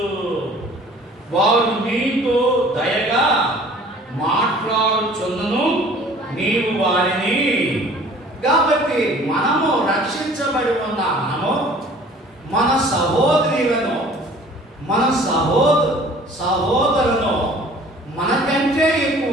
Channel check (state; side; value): normal; both; correlation 0.50